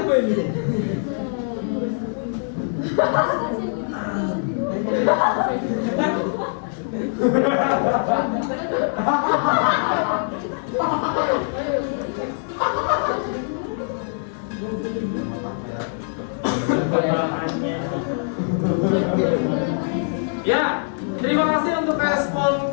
ini? Ya, terima kasih untuk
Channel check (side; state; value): right; silent; 64 dB below the other